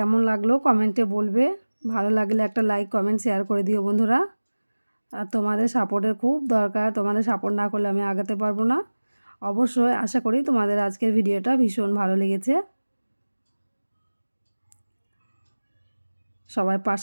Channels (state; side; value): inverted; both; correlation -1.00